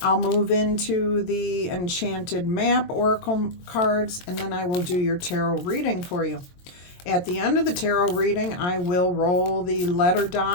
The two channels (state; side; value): late; right; 22 ms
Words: I'll move into the Enchanted Map oracle cards, and then I will do your tarot reading for you. At the end of the tarot reading, I will roll the letter